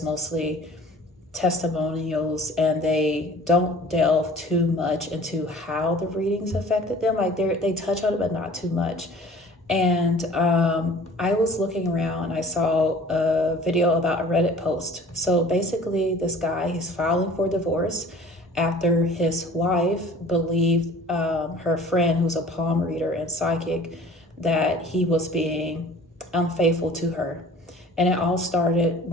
mostly testimonials, and they don't delve too much into how the readings affected them. Like they touch on it but not too much. And I was looking around, I saw a video about a Reddit post. So basically this guy, he's filing for divorce after his wife believed her friend, who's a palm reader and psychic, that he was being unfaithful to her. And it all started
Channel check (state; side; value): normal; both; correlation 0.47